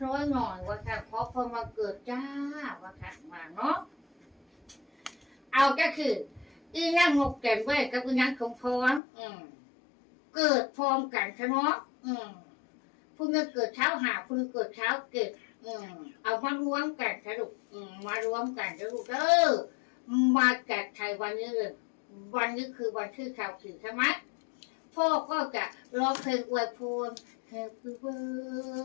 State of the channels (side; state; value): right; drops out; at 9.0 s